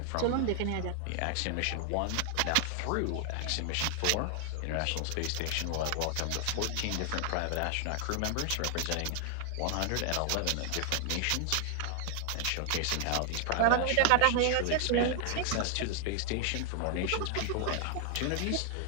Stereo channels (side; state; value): both; different; correlation 0.00